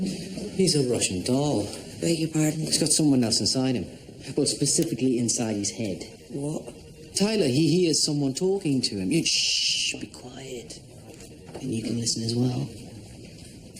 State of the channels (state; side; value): identical; both; correlation 1.00